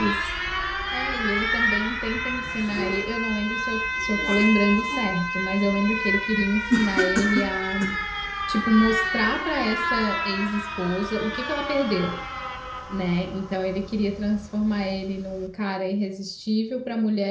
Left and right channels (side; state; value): both; identical; correlation 1.00